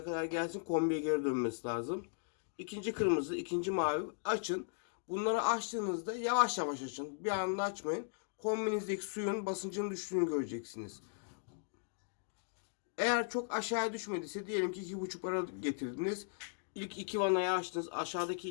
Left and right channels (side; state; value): right; silent; digital silence